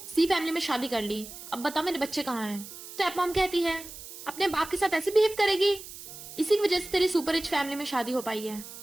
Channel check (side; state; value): right; noise; hiss, 13 dB below the sound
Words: सी फैमिली में शादी कर ली, अब बता मेरे बच्चे कहाँ हैं। स्टेप मॉम कहती है अपने बाप के साथ ऐसे बिहेव करेगी, इसी की वजह से तेरी सुपर रिच फैमिली में शादी हो पाई है।